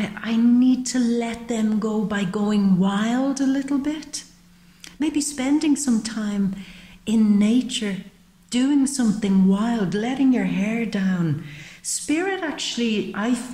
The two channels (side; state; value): both; identical; correlation 1.00